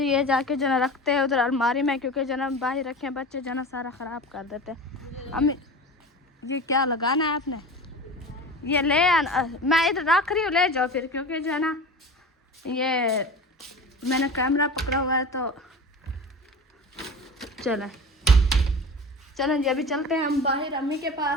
ये जाके जो ना रखते हैं उधर अलमारी में क्योंकि जो ना बाहर रखे बच्चे जो ना सारा ख़राब कर देते हैं अम्मी ये क्या लगाना है आपने ये ले आना मैं इधर रख रही हूँ ले जाओ फिर क्योंकि जो है ना ये मैंने कैमरा पकड़ा हुआ है तो चलें जी अभी चलते हैं हम बाहर अम्मी के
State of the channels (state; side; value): normal; both; correlation 0.33